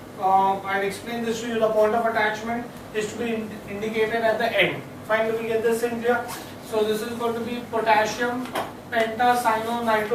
I'll explain this to you. The point of attachment is to be indicated at the end. Finally, we get this in here. So this is going to be potassium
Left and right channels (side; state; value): both; identical; correlation 1.00